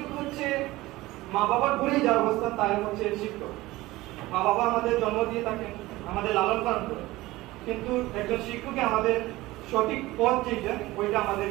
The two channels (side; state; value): left; quieter; 18.7 dB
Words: হচ্ছে মা বাবার ঘুরেই যার অবস্থান তাই হচ্ছে শিক্ষক। মা বাবা আমাদের জন্ম দিয়ে থাকেন, আমাদের লালন পালন করে, কিন্তু একজন শিক্ষককে আমাদের সঠিক পথ যেটা ওইটা